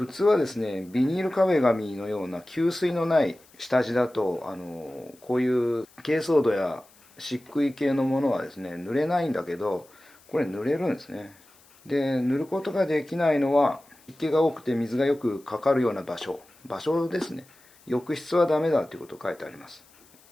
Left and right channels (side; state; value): left; noise; hiss, 28 dB below the sound